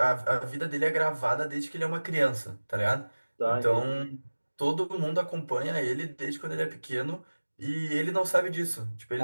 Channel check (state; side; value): inverted; both; correlation -1.00